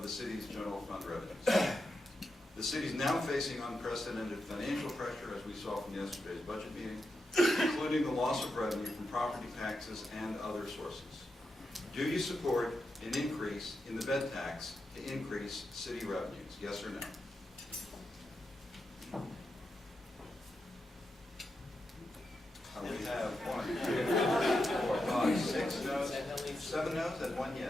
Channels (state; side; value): normal; both; correlation 0.87